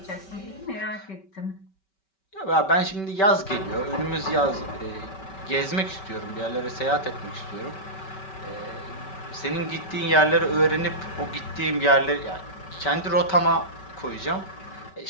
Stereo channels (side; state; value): right; late; 5.2 ms